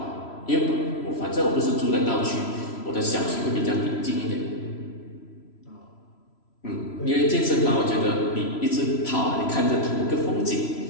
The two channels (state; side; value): late; right; 3.0 ms